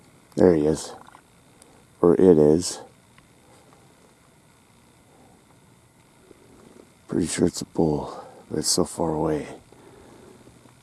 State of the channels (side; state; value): both; identical; correlation 1.00